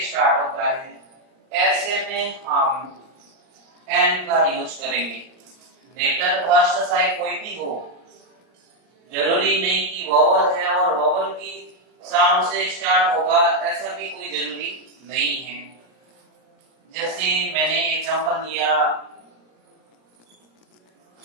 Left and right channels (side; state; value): left; late; 38 ms